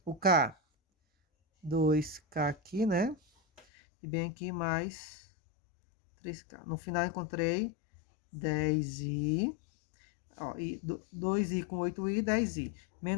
O K, 2K aqui, né? E bem aqui mais 3K. No final encontrei 10I. Ó, 2i com 8i, 10i.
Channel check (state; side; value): drops out; right; at 3.6 s